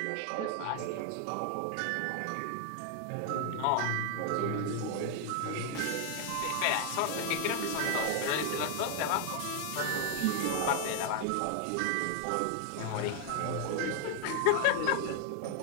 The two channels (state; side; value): different; both; correlation 0.00